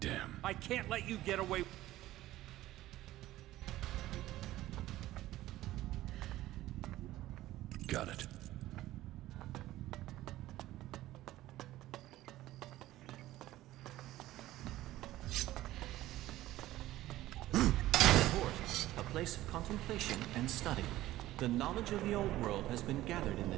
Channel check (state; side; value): quieter; left; 15.5 dB